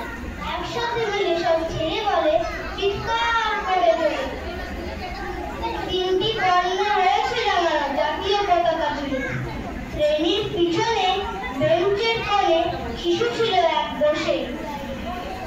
একসাথে মিলে সব ছেড়ে বলে, চিৎকার করে তোলে। 3টি বর্ণ রয়েছে জানানো জাতীয় পতাকা জুড়ে। শ্রেণীর পিছনে বেঞ্চের কোণে শিশু ছিল এক বসে।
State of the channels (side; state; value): both; identical; correlation 1.00